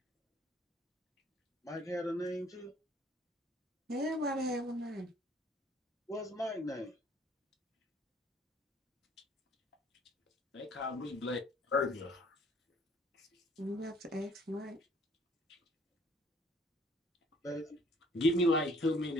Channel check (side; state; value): both; normal; correlation 0.59